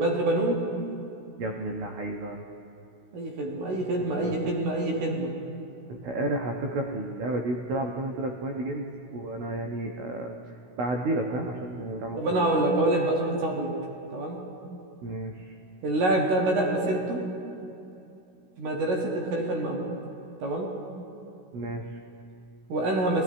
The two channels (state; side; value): late; left; 16 ms